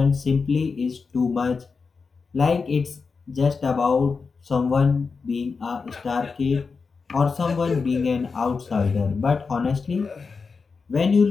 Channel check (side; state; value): right; quieter; 4.9 dB